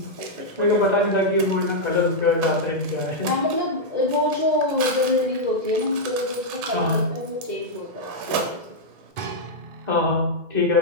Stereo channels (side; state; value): left; late; 2.3 ms